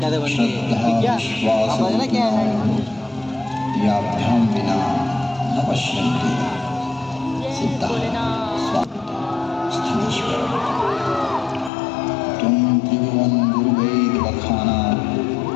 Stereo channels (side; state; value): right; drops out; at 11.7 s